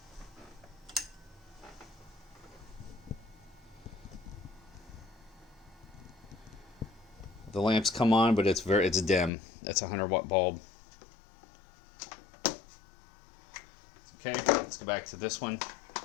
The lamps come on, but it's dim. That's a 100-watt bulb. Okay, let's go back to this one.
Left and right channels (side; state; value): right; drops out; at 9.3 s